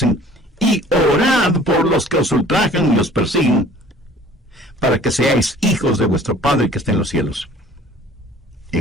y orad por los que os ultrajan y os persiguen, para que seáis hijos de vuestro Padre que está en los cielos.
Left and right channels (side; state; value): both; normal; correlation 0.51